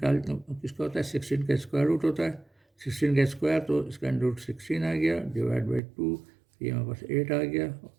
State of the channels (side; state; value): left; drops out; at 5.8 s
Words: किसका होता है, 16 का स्क्वायर रूट होता है, 16 का स्क्वायर, तो इसका अंडर रूट 16 आ गया, डिवाइड बाई 2, ये हमारे पास 8 आ गया,